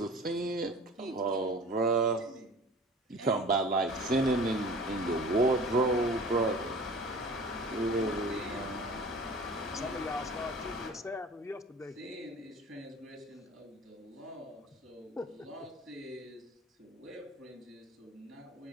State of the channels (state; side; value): normal; both; correlation 0.43